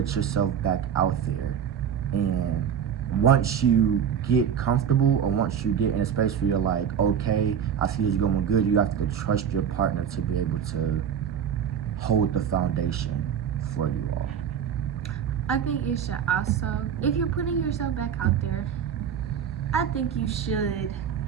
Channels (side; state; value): left; quieter; 8.2 dB